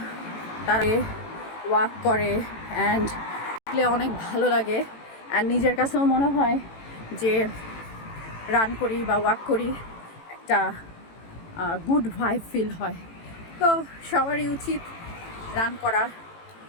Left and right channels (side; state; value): right; late; 18 ms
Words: তারা ওয়াক করে অ্যান্ড অনেক ভালো লাগে। অ্যান্ড নিজের কাছেও মনে হয় যে রান করি বা ওয়াক করি একটা গুড ভাইব ফিল হয়। তো সবারই উচিত রান করা